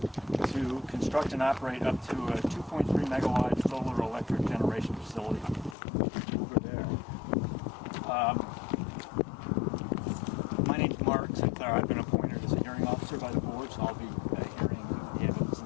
to construct and operate up to a 2.3 megawatt solar electric generation facility over there. My name's Mark Sinclair. I've been appointed as a hearing officer by the board, so I'll be hearing the evidence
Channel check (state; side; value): drops out; right; at 5.8 s